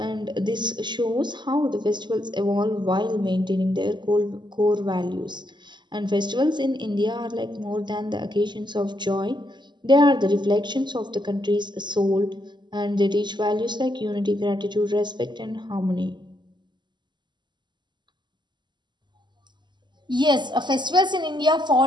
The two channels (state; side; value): late; left; 0.21 ms